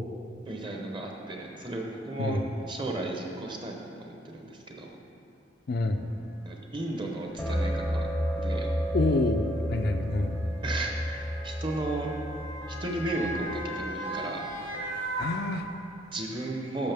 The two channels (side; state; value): both; normal; correlation 0.68